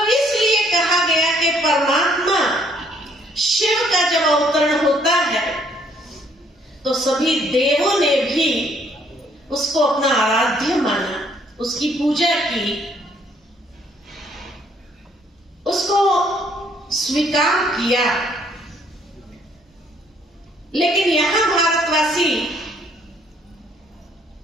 इसलिए कहा गया कि परमात्मा शिव का जब अवतरण होता है तो सभी देवों ने भी उसको अपना आराध्य माना, उसकी पूजा की, उसको स्वीकार किया। लेकिन यहां भारत भारतवासी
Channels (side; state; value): both; normal; correlation 0.65